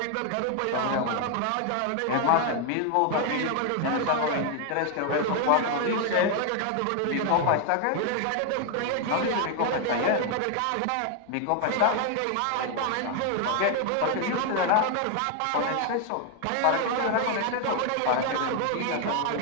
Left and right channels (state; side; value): different; both; correlation 0.00